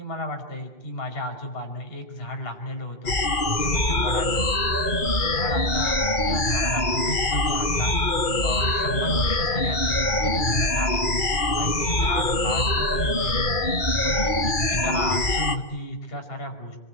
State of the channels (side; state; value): right; late; 2.4 ms